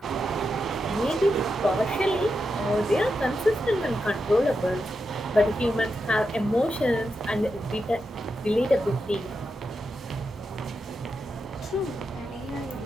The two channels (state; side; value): normal; both; correlation 0.87